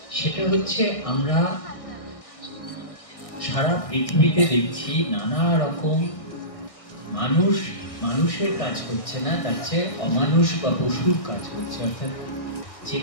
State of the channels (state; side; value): late; right; 1.6 ms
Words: সেটা হচ্ছে আমরা সারা পৃথিবীতে দেখছি নানা রকম মানুষের কাজ করছে না, তার চেয়ে অমানুষ বা পশুর কাজ করছে। অর্থাৎ